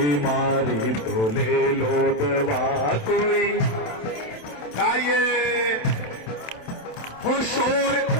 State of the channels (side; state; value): right; late; 27 ms